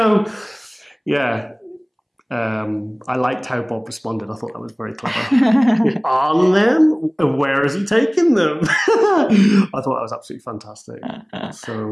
yeah. I liked how Bob responded. I thought that was very clever. On them? Where is he taking them? I thought that was absolutely fantastic. So,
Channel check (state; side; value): identical; both; correlation 1.00